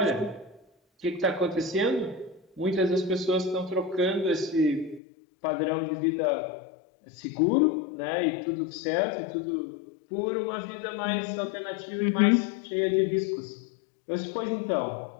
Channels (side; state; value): right; drops out; at 5.0 s